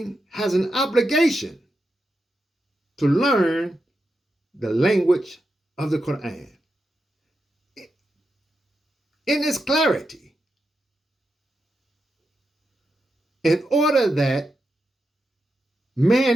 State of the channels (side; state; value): both; normal; correlation 0.87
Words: has an obligation to learn the language of the Qur'an in its clarity, in order that